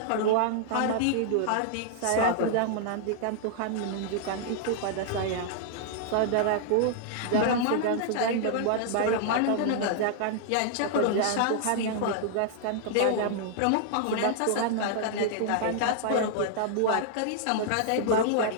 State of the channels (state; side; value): different; both; correlation -0.01